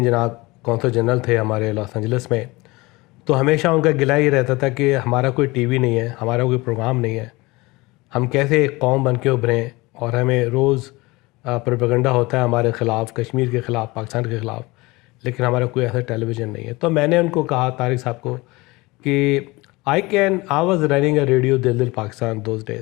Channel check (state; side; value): quieter; right; 22.7 dB